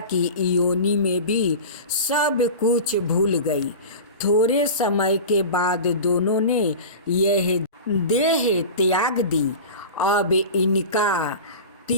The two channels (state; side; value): inverted; both; correlation -0.32